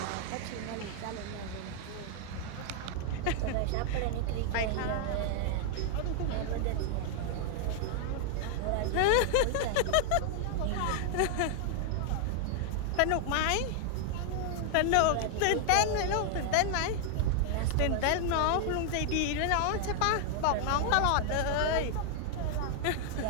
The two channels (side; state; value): both; different; correlation 0.00